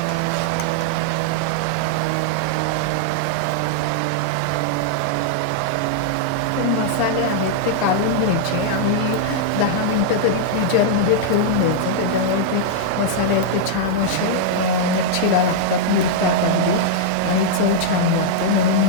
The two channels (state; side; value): different; both; correlation -0.02